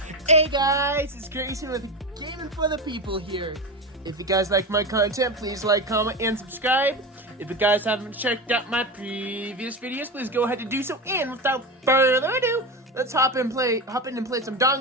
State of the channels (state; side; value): normal; both; correlation 0.21